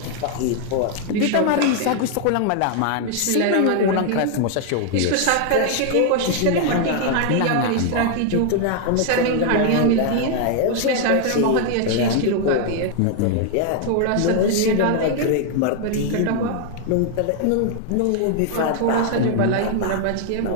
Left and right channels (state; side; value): different; both; correlation 0.00